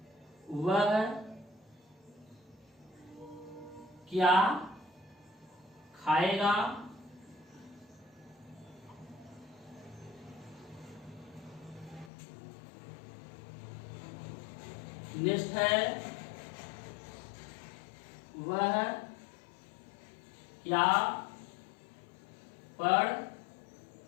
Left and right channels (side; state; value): right; drops out; at 12.1 s